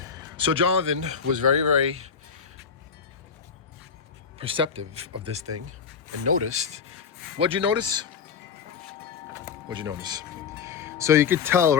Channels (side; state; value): right; quieter; 6.4 dB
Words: So Jonathan was very, very perceptive of this thing and noticed. What'd you notice? What'd you notice? So you could tell